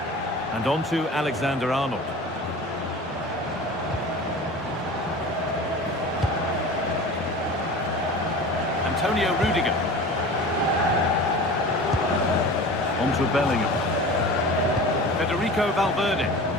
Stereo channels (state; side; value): normal; both; correlation 0.36